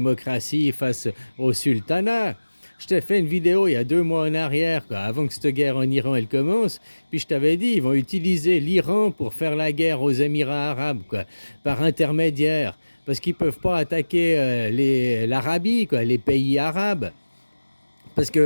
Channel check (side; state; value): both; inverted; correlation -1.00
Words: face au sultanat. Je t'ai fait une vidéo il y a 2 mois en arrière, quoi, avant que cette guerre en Iran elle commence. Puis je t'avais dit, ils vont utiliser l'Iran pour faire la guerre aux Émirats arabes, quoi, par intermédiaire. Parce qu'ils ne peuvent pas attaquer l'Arabie, quoi, les pays arabes. Parce